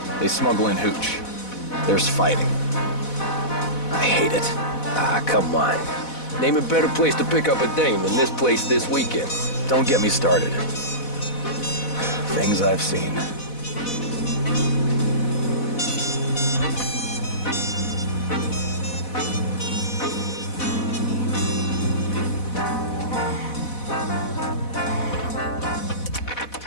They smuggle in hooch. There's fighting. I hate it. Ah, come on. Name a better place to pick up a dame than this place this weekend. Don't get me started. Things I've seen.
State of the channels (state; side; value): late; right; 4.1 ms